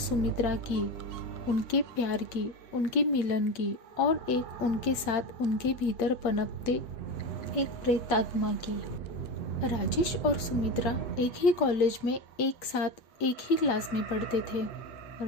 की, उनके प्यार की, उनके मिलन की और एक उनके साथ उनके भीतर पनपते एक प्रेतात्मा की। राजेश और सुमित्रा एक ही कॉलेज में एक साथ एक ही क्लास में पढ़ते थे।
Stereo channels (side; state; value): right; late; 8.3 ms